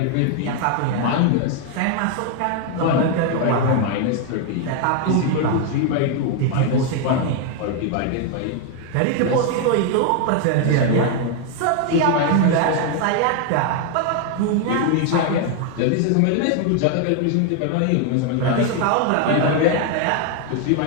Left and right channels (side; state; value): both; different; correlation 0.01